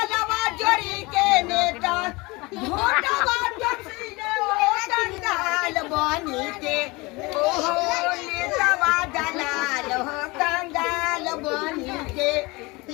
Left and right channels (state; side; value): quieter; right; 24.3 dB